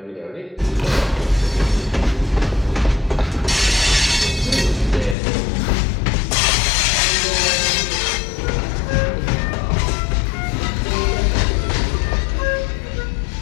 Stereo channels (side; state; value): right; drops out; at 5.2 s